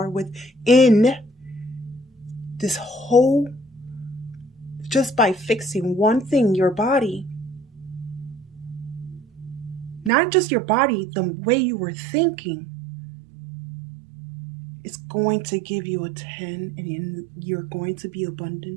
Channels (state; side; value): drops out; left; at 10.1 s